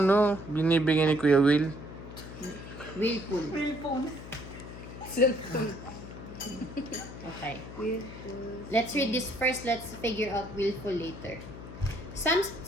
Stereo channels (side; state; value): left; noise; hum, 12 dB below the sound